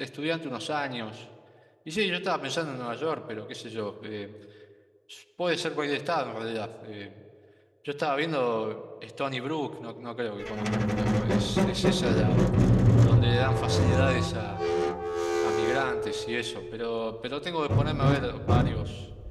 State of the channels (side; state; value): both; identical; correlation 1.00